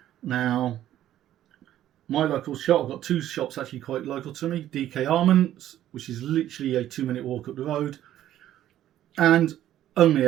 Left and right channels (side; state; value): left; quieter; 12.4 dB